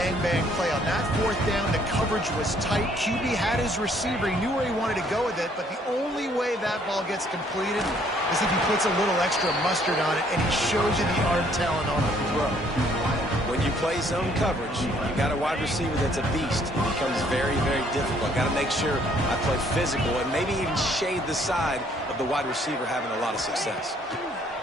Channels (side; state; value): both; normal; correlation 0.64